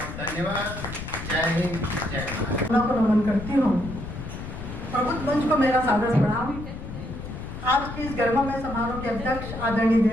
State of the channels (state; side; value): noise; left; rumble, 9 dB below the sound